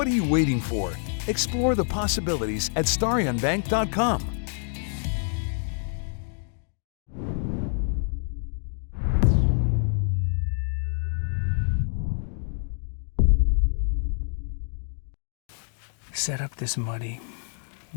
are you waiting for? Explore the possibilities at StarionBank.com. Set up this muddy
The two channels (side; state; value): right; silent; 59 dB below the other